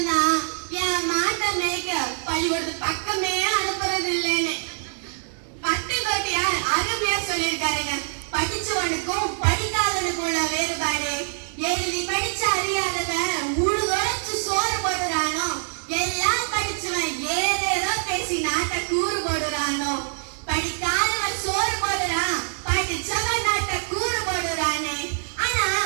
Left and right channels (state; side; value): silent; left; digital silence